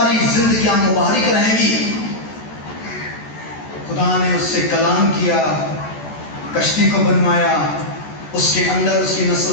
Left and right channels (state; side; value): late; right; 14 ms